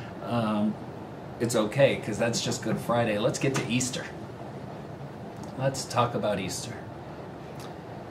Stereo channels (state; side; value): identical; both; correlation 1.00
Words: it's okay, because that's just Good Friday. Let's get to Easter. Let's talk about Easter.